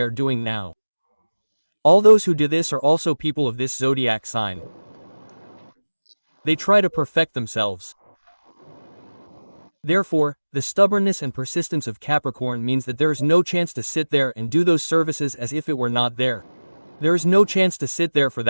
are doing now. All those who do this are also people of this zodiac sign. They try to perfect themselves. Therefore, the stubbornness and persistence of Capricorn means that there is no chance to sit there and do those services as if it were not there. There is no chance to sit there for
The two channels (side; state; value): both; inverted; correlation -1.00